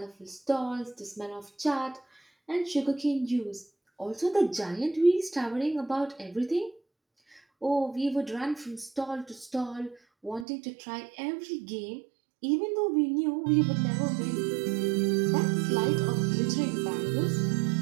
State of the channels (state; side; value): drops out; left; at 10.5 s